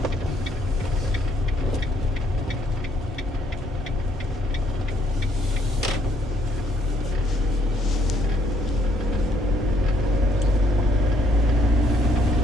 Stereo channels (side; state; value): both; normal; correlation 0.68